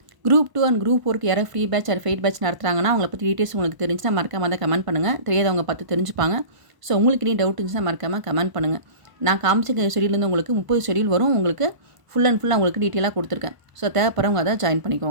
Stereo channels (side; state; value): left; late; 1.0 ms